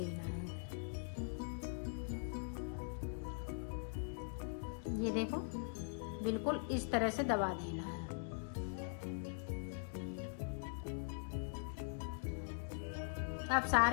है। ये देखो बिल्कुल इस तरह से दबा देना है। अब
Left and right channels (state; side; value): silent; right; digital silence